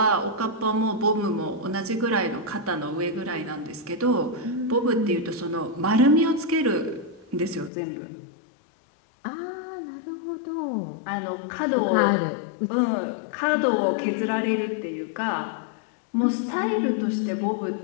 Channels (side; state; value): right; drops out; at 7.7 s